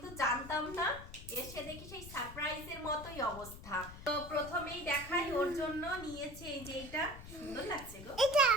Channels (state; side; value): noise; left; rumble, 13 dB below the sound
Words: জানতাম না, এসে দেখি সেই সারপ্রাইজের মতোই অবস্থা। তো প্রথমেই দেখাই, ওর জন্য নিয়েছে এই যে এটা, সুন্দর লাগছে গো, এটা